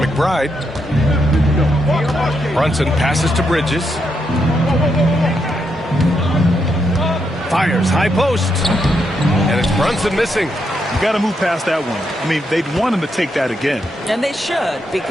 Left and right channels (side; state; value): both; normal; correlation 0.80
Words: Brunson passes to Bridges. Fires high post. And it's Brunson missing. You got to move past that one. I mean, they'd want him to take that again. And they should,